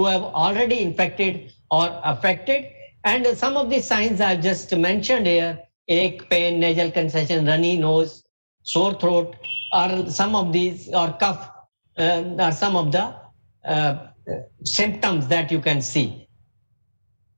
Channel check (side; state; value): both; inverted; correlation -1.00